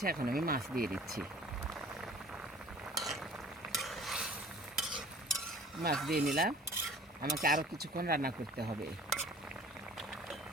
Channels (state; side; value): normal; both; correlation 0.48